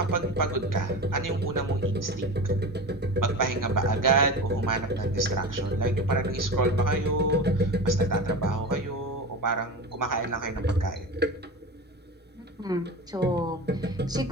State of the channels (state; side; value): normal; both; correlation 0.29